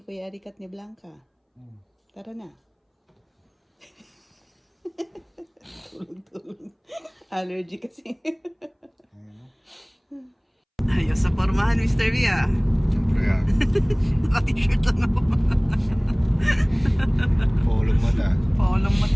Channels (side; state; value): both; identical; correlation 1.00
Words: Kuya Eric at ni Blanca. Tara na. Tulog-tulog. Allergy kasi. Ayos sa pormahan, Mr. V, ah. Siyempre yan. Naka-t-shirt lang ako. Paulong mata. Paulong